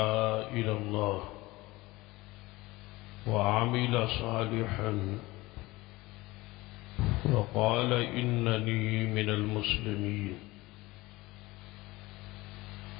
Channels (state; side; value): quieter; right; 20.3 dB